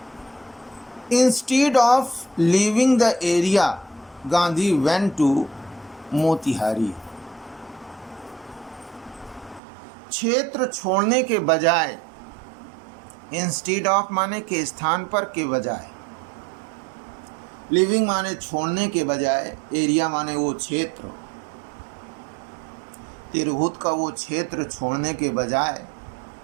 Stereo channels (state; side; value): drops out; left; at 9.6 s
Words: Instead of leaving the area, Gandhi went to Motihari. क्षेत्र छोड़ने के बजाय, इंस्टीड ऑफ माने के स्थान पर, के बजाय, लिविंग माने छोड़ने के बजाय, एरिया माने वो क्षेत्र, तिरहुत का वो क्षेत्र छोड़ने के बजाय